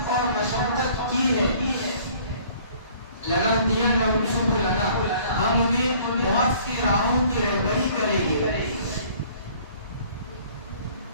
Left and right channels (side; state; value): both; inverted; correlation -0.55